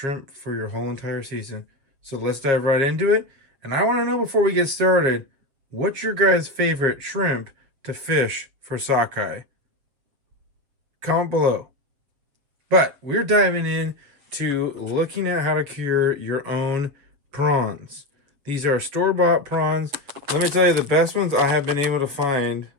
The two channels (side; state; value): left; late; 7.7 ms